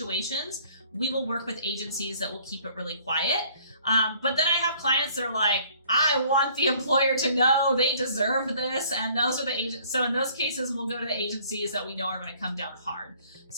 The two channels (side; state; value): both; inverted; correlation -0.57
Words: We will work with agencies that will keep it really quiet. But then I have clients that are like, I want the employer to know, they deserve this. And those are the agents. So in those cases, we'll go to the agencies that we know are going to come down hard.